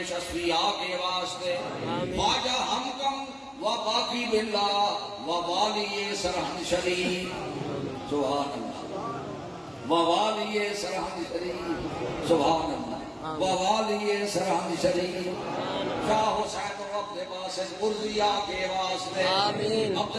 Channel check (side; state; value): both; identical; correlation 1.00